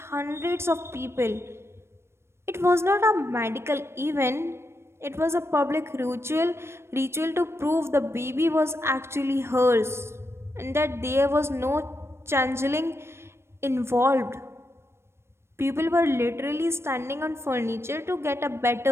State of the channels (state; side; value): late; left; 0.12 ms